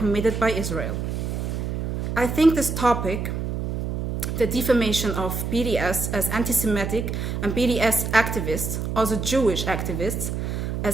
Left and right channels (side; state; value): right; noise; hum, 3 dB below the sound